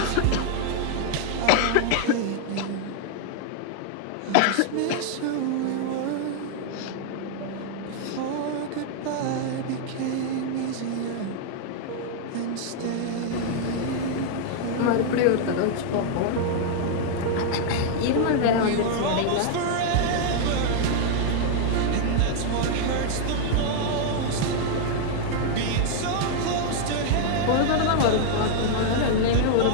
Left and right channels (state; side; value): different; both; correlation 0.00